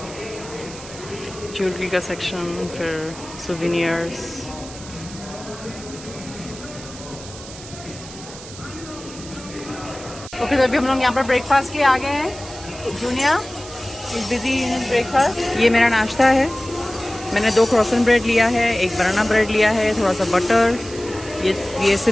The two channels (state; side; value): noise; right; hiss, 15 dB below the sound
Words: ज्वेलरी का सेक्शन, फिर सोवेनियर्स। ओके, तो अभी हम लोग यहाँ पर ब्रेकफास्ट के आ गए हैं। Junior is busy in breakfast. ये मेरा नाश्ता है। मैंने 2 क्रॉसन ब्रेड लिया है, 1 बनाना ब्रेड लिया है, थोड़ा सा बटर, ये